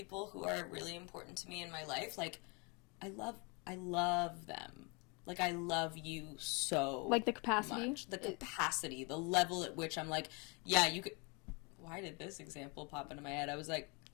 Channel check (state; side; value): quieter; right; 31.0 dB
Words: who are really important to me in my life, like, I love them. Like, I love you so like the capacity? much. The capacity, the level at which I'm like, yeah, you could... Why did this example pop into my head? I was